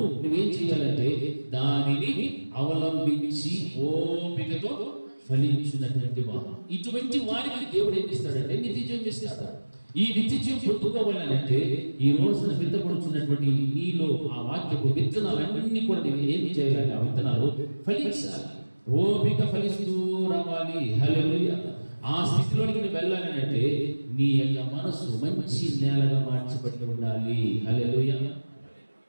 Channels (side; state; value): both; inverted; correlation -1.00